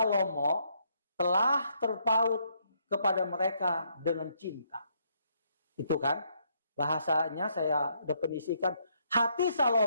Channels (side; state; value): both; inverted; correlation -0.73